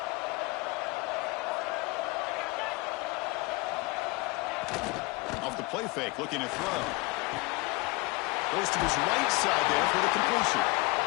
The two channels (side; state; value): right; quieter; 24.5 dB